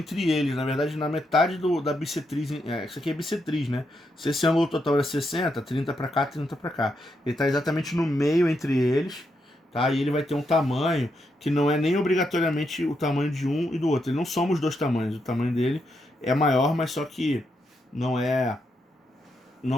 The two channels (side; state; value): both; normal; correlation 0.81